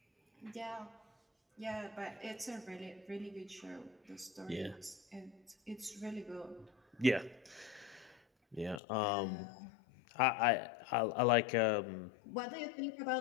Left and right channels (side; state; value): right; drops out; at 8.8 s